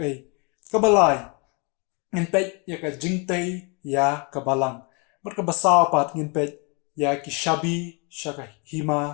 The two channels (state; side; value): quieter; right; 32.8 dB